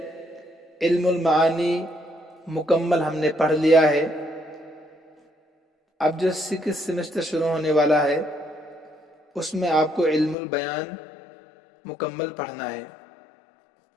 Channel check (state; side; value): drops out; right; at 10.4 s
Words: علم المعانی مکمل ہم نے پڑھ لیا ہے۔ اب جو 6th سیمسٹر شروع ہونے والا ہے اس میں آپ کو علم البیان مکمل پڑھنا ہے۔